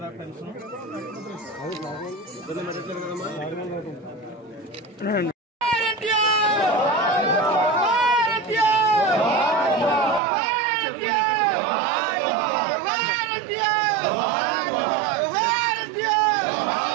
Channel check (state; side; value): drops out; left; at 10.2 s